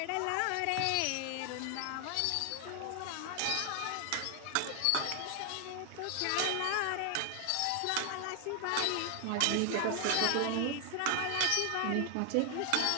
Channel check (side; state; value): both; different; correlation 0.00